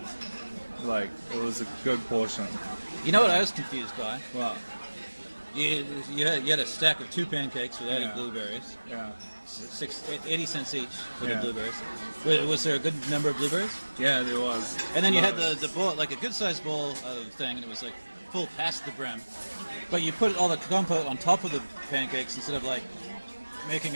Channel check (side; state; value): both; inverted; correlation -1.00